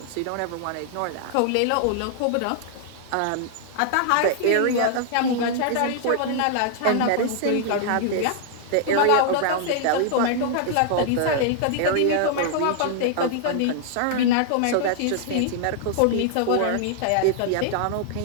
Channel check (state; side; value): different; both; correlation -0.01